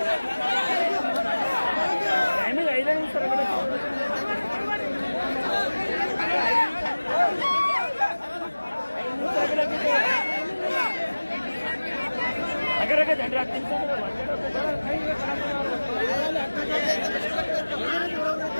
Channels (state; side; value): inverted; both; correlation -1.00